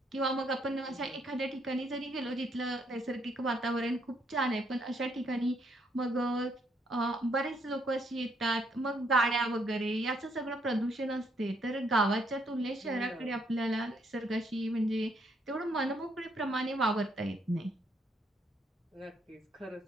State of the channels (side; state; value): both; normal; correlation 0.72